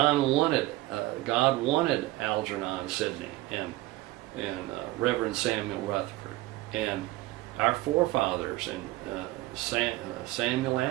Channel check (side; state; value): left; quieter; 18.6 dB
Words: wanted Algernon Sidney and Reverend Samuel Rutherford and our forefathers and Samuel